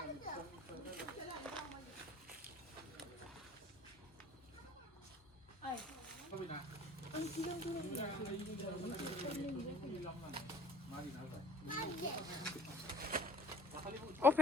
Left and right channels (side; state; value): both; normal; correlation 0.51